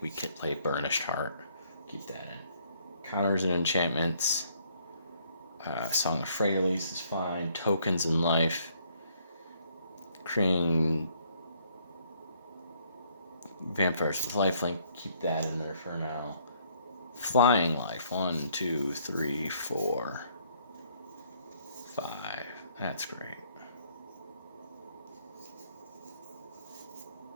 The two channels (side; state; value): both; inverted; correlation -0.67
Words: we could play Burnished Heart. Keep that in. Counters and enchantments. Song of Freyalise is fine. Tokens and Life. Creating Vampires with Lifelink. Keep that in there for now. Flying Life. 1, 2, 3, 4, 5. That's great.